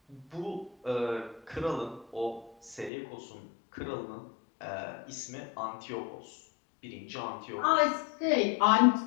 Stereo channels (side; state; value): right; drops out; at 2.9 s